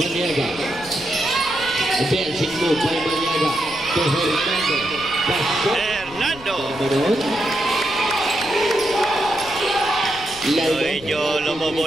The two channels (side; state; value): left; noise; rumble, 18 dB below the sound